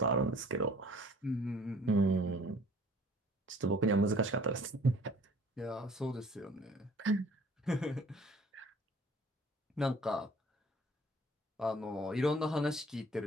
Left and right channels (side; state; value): both; normal; correlation 0.53